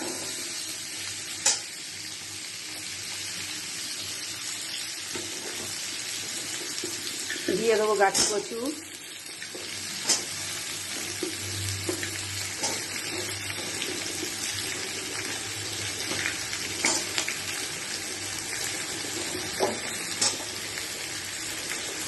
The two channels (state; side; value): identical; both; correlation 1.00